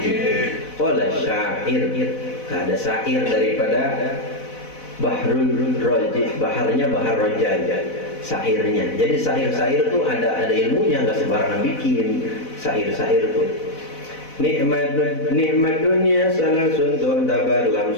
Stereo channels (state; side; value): late; right; 4.0 ms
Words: Qala syair, ada syair daripada Bahrul Raji, baharnya bahar rojal, syairnya. Jadi syair-syair itu ada ilmunya, nggak sembarangan bikin syair-syair itu. Nikmat dunia salasun tu'tabar